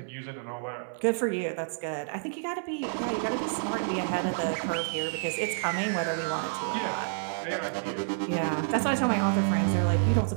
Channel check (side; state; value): left; silent; 59 dB below the other